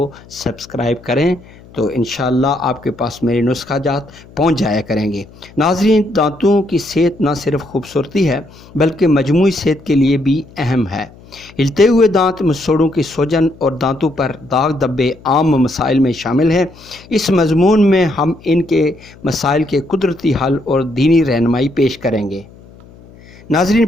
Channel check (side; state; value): left; noise; hum, 23 dB below the sound